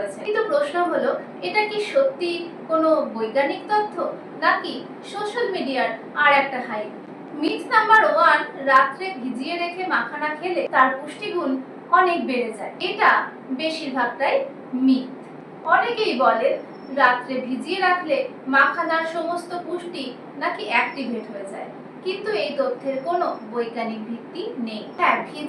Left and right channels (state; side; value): identical; both; correlation 1.00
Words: কিন্তু প্রশ্ন হলো, এটা কি সত্যি কোনো বৈজ্ঞানিক তথ্য নাকি সোশ্যাল মিডিয়ার আর একটা হাইপ? মিথ নাম্বার 1, রাত্রে ভিজিয়ে রেখে মাখানা খেলে তার পুষ্টিগুণ অনেক বেড়ে যায়। এটা বেশিরভাগটাই মিথ। অনেকেই বলেন রাত্রে ভিজিয়ে রাখলে মাখানার সমস্ত পুষ্টি নাকি অ্যাক্টিভেট হয়ে যায়, কিন্তু এই তথ্যের কোনো বৈজ্ঞানিক ভিত্তি নেই। হ্যাঁ,